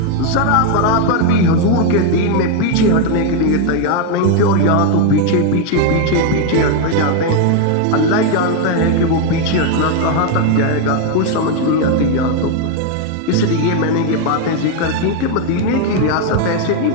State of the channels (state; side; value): different; both; correlation 0.01